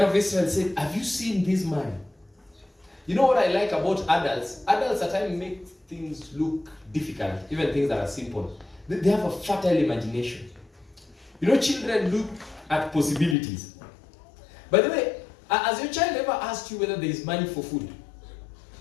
of Israel said, have you seen this man? You know what I like about adults? Adults at times make things look difficult, even things that are simple. They have a fertile imagination. You know, children look at possibilities. By the way, has your child ever asked you whether there is money for food?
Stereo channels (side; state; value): right; drops out; at 13.4 s